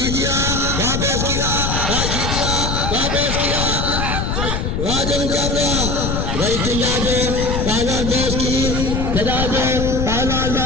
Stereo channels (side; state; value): left; noise; rumble, 1 dB below the sound